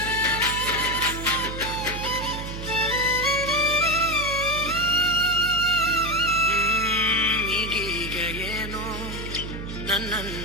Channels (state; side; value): noise; right; hum, 8 dB below the sound